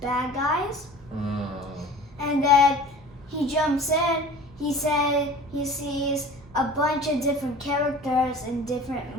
guys. And then he jumps in. He said he sees a bunch of different characters in different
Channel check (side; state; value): both; normal; correlation 0.42